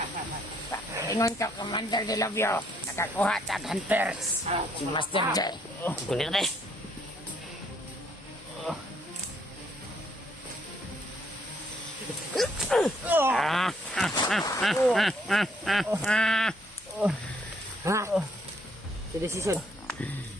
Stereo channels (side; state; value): both; normal; correlation 0.68